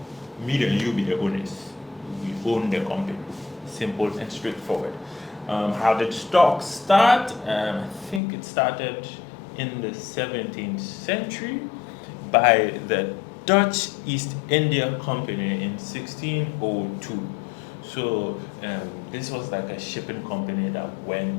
me and you be the owners. We own the company. Simple and straightforward. How did stocks start? I think it started in the 17th century by the Dutch East India Company in 1602. So this was like a shipping company that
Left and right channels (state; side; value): drops out; right; at 8.2 s